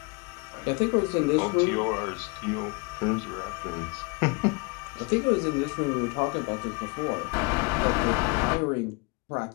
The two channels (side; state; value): right; quieter; 29.6 dB